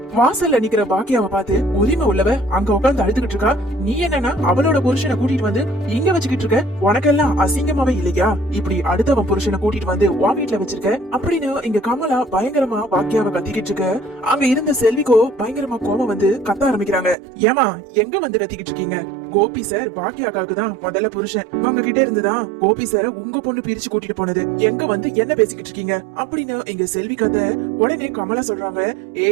வாசல்ல நிக்கிற பாக்கியாவை பார்த்து, உரிமை உள்ளவ அங்க உட்கார்ந்து அழுதுகிட்டு இருக்கா, நீ என்னன்னா அவளோட புருஷனை கூட்டிட்டு வந்து இங்க வச்சுக்கிட்டு இருக்க, உனக்கெல்லாம் அசிங்கமாவே இல்லையா? இப்படி அடுத்தவன் புருஷனை கூட்டிட்டு வந்து உன் வீட்டுல வச்சிருக்க அப்படின்னு இங்க கமலா பயங்கரமா பாக்கியாவை கத்திக்கிட்டு இருக்க. அங்க இருந்த செல்விக்கோ பயங்கரமா கோபம் வந்து கத்த ஆரம்பிக்கிறாங்க. ஏமா எங்க வந்து கத்திக்கிட்டு இருக்கீங்க? கோபி சார் பாக்கியாக்காக்கு தான் முதல்ல புருஷன், உங்க கிட்ட இருந்துதான் கோபி சார் உங்க பொண்ணு பிரிச்சு கூட்டிட்டு போனது, எங்க வந்து என்ன பேசிக்கிட்டு இருக்கீங்க அப்படின்னு இங்க செல்வி கதை. உடனே கமலா சொல்றாங்க,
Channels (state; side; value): drops out; left; at 17.2 s